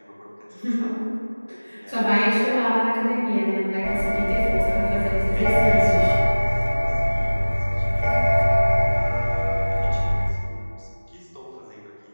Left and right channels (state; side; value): inverted; both; correlation -1.00